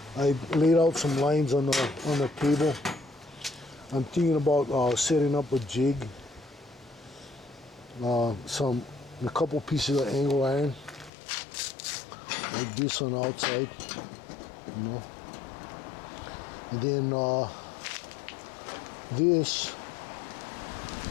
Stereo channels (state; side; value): drops out; right; at 11.1 s